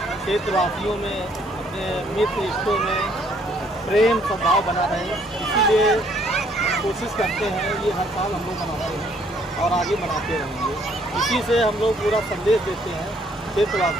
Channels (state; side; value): normal; both; correlation 0.65